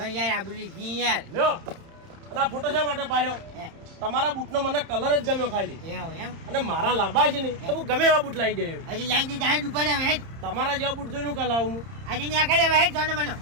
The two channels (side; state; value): left; late; 30 ms